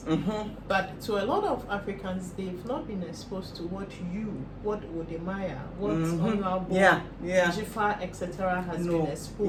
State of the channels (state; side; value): identical; both; correlation 1.00